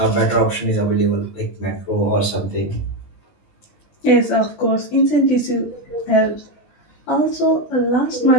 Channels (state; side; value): late; right; 20 ms